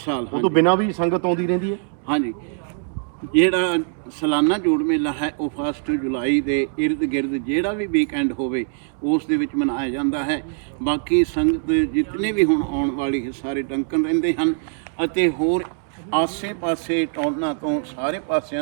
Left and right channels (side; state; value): left; silent; 63 dB below the other